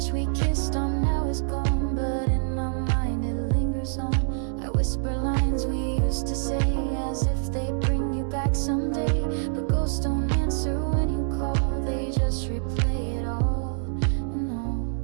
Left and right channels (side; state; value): left; silent; 58 dB below the other